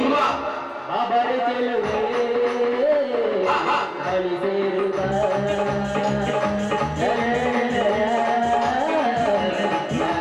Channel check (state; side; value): identical; both; correlation 1.00